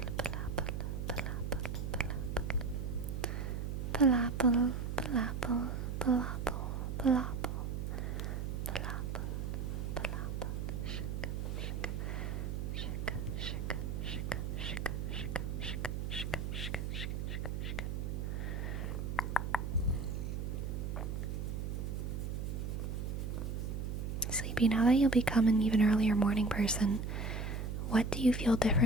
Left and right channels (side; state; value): right; noise; hum, 3 dB below the sound